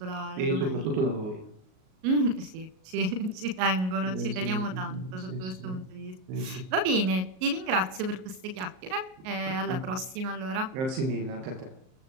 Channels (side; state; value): left; late; 38 ms